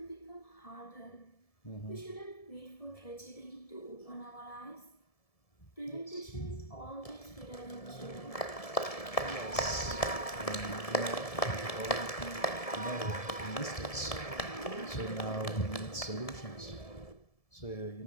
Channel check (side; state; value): right; late; 1.7 ms